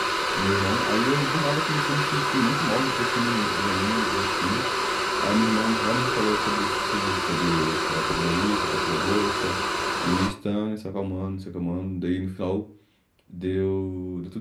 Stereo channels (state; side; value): identical; both; correlation 1.00